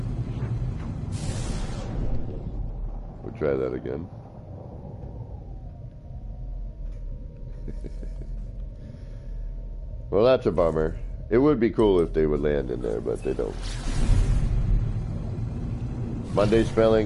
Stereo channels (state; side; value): identical; both; correlation 1.00